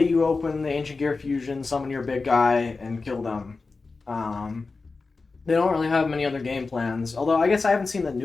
you open the Ancient Gear Fusion, summon your big guy, and kill them. They don't really have many other game plans. Although I guess I haven't seen the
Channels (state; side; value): quieter; right; 4.0 dB